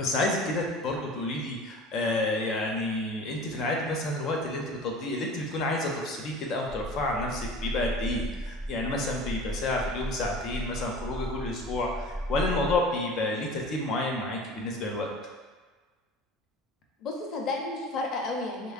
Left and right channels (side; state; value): both; normal; correlation 0.40